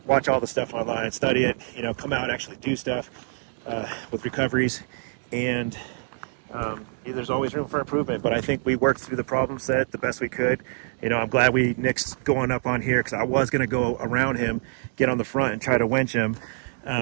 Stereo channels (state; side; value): silent; left; 60 dB below the other